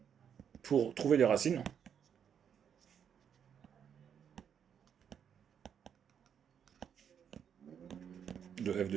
pour trouver les racines de f de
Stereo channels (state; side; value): quieter; left; 8.1 dB